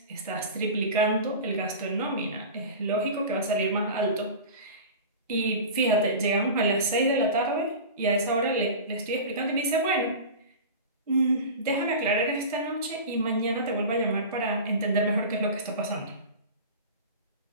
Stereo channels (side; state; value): both; inverted; correlation -0.32